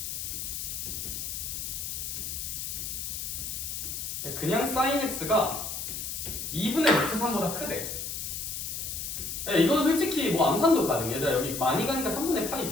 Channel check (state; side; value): noise; left; hiss, 5 dB below the sound